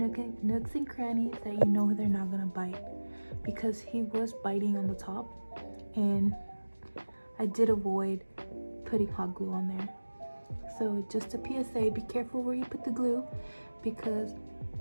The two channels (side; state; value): both; inverted; correlation -1.00